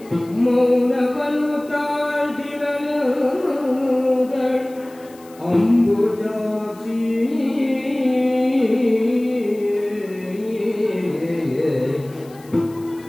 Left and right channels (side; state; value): left; noise; hiss, 25 dB below the sound